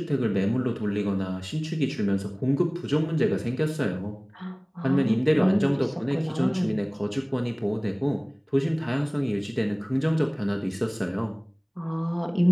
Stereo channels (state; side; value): identical; both; correlation 1.00